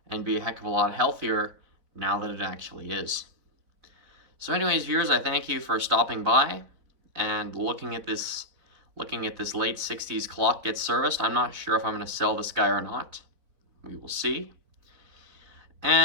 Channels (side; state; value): left; late; 4.2 ms